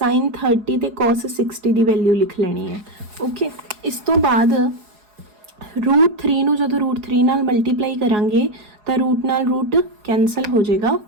30 ते cos 60 की वैल्यू लिख लेनी है, ओके। इस तो बाद रूट 3 नूं जदों रूट 3 नाल मल्टीप्लाई करांगे तो रूट नाल रूट कैंसल हो जाएगा,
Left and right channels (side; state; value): left; late; 4.8 ms